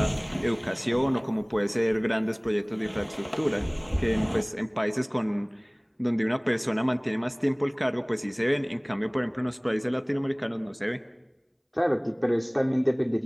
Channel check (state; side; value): identical; both; correlation 1.00